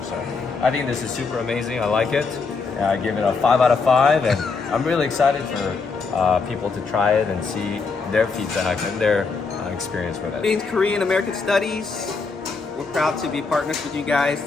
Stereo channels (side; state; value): right; quieter; 4.6 dB